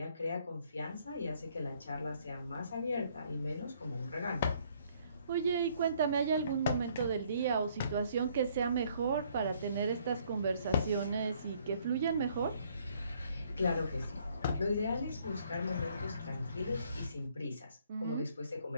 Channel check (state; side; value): inverted; both; correlation -0.64